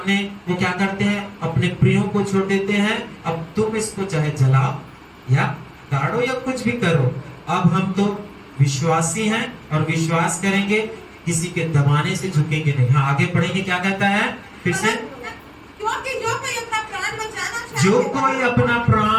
वो क्या करते हैं? अपने प्रियों को छोड़ देते हैं, अब तुम इसको चाहे जलाओ या गाड़ो या कुछ भी करो, अब हम तो विश्वासी हैं और विश्वास करेंगे, किसी के दबाने से झुकेंगे नहीं। हाँ, आगे पढ़ेंगे, क्या कहता है फिर से? क्योंकि जो कोई अपना प्राण बचाना जो चाहेगा, कोई अपना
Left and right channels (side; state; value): both; identical; correlation 1.00